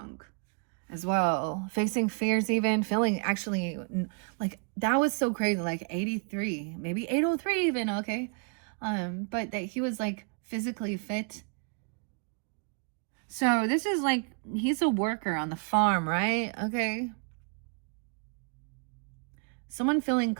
as well. Facing fears even. Feeling actually like that was so crazy. Like 83, maybe 803 even, okay? But that he was like physically fit. So this is like, he's a worker on the farm, right? Okay. Someone feeling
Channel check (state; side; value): quieter; left; 38.8 dB